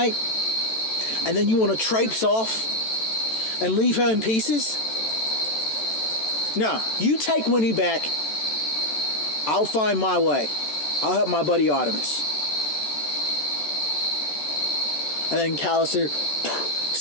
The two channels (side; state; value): right; late; 14 ms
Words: And then you want to traipse off and leave her in pieces? No, you take Winnie back. I'll find my way. I'll help my buddy Artemis. And then Callister